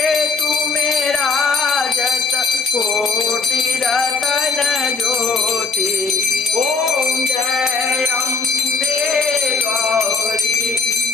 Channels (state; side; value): quieter; right; 4.4 dB